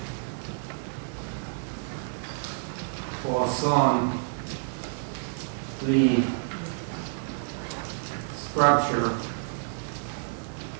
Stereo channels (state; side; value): silent; left; digital silence